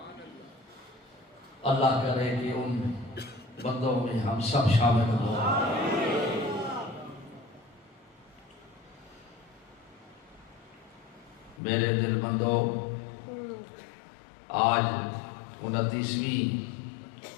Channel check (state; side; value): drops out; right; at 11.6 s